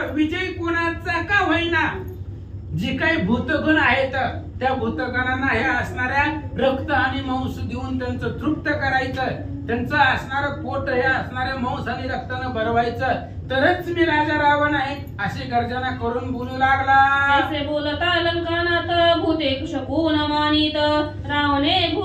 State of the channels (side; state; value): both; identical; correlation 1.00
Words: विजय कोणाचा का होईना, जी काही भूतगण आहेत त्या भूतगणांना हे असणाऱ्या रक्त आणि मांस देऊन त्यांचं तृप्त करायचं. त्यांचं असणारं पोट हे असणाऱ्या मांस आणि रक्तानं भरवायचं, तरच मी राजा रावण आहे अशी गर्जना करून बोलू लागला. असे बोलता लंकानात भूते शकून मानित रावणे